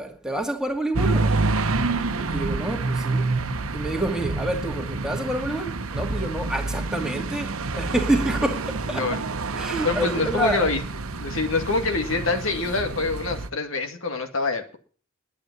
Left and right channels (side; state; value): both; normal; correlation 0.43